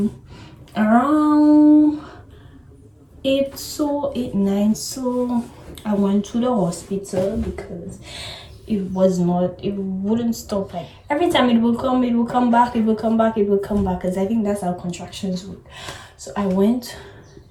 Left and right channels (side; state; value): both; identical; correlation 1.00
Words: Around 8, so 8, 9, so I went to the hospital because it wouldn't stop. Like every time it will come back, it will come back, because I think that's how contractions work. So I went